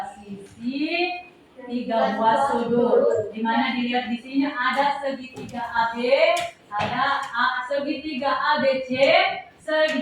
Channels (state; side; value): identical; both; correlation 1.00